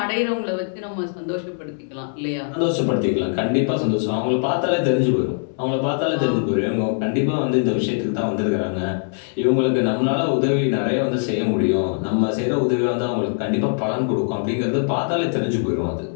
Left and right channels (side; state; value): right; silent; digital silence